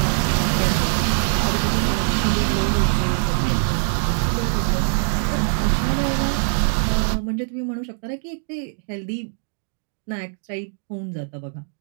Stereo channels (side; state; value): left; silent; 64 dB below the other